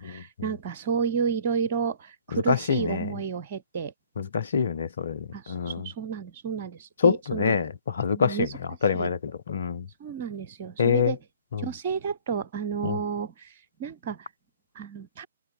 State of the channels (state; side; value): inverted; both; correlation -0.54